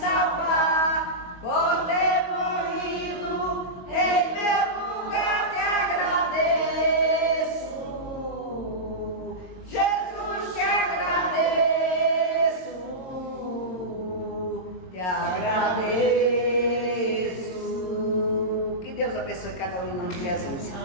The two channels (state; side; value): late; right; 22 ms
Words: por ter morrido em meu lugar. Te agradeço, Jesus, te agradeço, te agradeço. Que Deus abençoe cada um em nome de Jesus.